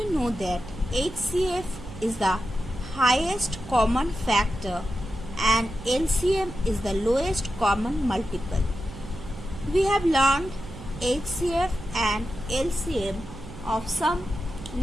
know that HCF is the highest common factor and LCM is the lowest common multiple. We have learned HCF and LCM of some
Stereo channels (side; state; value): right; noise; hum, 14 dB below the sound